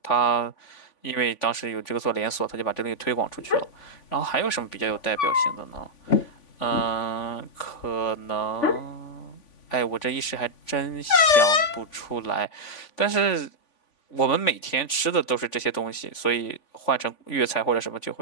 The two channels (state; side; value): late; right; 3.5 ms